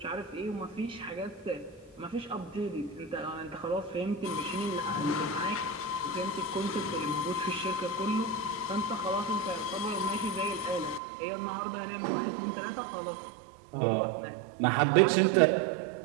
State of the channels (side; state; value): left; drops out; at 11.0 s